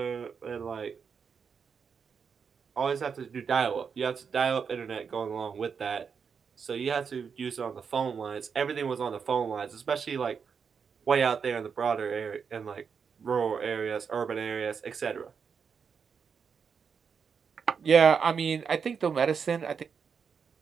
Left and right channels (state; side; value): quieter; left; 6.3 dB